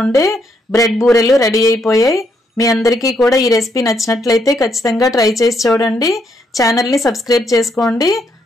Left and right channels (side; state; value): both; normal; correlation 0.75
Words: ఉండే బ్రెడ్ బూరెలు రెడీ అయిపోయాయి. మీ అందరికీ కూడా ఈ రెసిపీ నచ్చినట్లయితే ఖచ్చితంగా ట్రై చేసి చూడండి. ఛానల్ని సబ్స్క్రైబ్ చేసుకోండి.